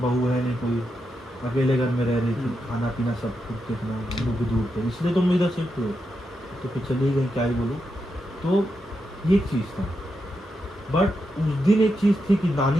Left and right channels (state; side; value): normal; both; correlation 0.85